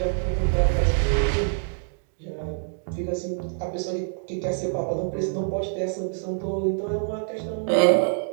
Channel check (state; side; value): silent; left; digital silence